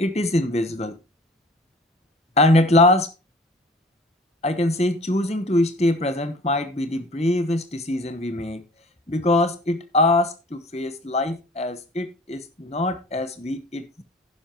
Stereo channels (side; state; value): both; normal; correlation 0.47